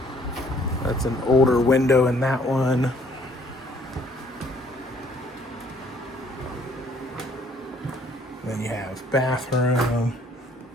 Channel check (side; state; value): both; normal; correlation 0.61